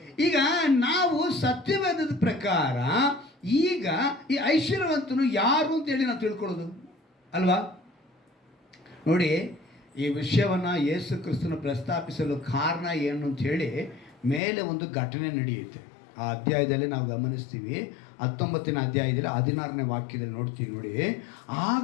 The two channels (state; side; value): drops out; right; at 14.4 s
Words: ಈಗ ನಾವು ಸತ್ಯವೇದದ ಪ್ರಕಾರ ಈಗ ಈ ಐಶ್ವರ್ಯವಂತನು ಯಾರು ಅಂತೇಳಿ ನಾವು ತಿಳ್ಕೊಳ್ಳೋದು ಅಲ್ವಾ? ನೋಡಿ, ಈ ವಿಷಯವನ್ನು ಯೇಸು ಕ್ರಿಸ್ತನ ಪ್ರಸ್ತಾಪಿಸಲು ಕಾರಣ ಏನು ಅಂತ ಹೇಳಿ ಮೇಲೆ ಒಂದು ಘಟನೆ ನಡೆಯುತ್ತೆ. ಆ ಅಧ್ಯಾಯದಲ್ಲಿ ನಾವು ಗಮನಿಸ್ತೀವಿ. 19ನೇ ಅಧ್ಯಾಯದಲ್ಲಿ 16ನೇ ವಾಕ್ಯದಲ್ಲಿ ನೋಡ್ತೀವಿ. ನೋಡಿ,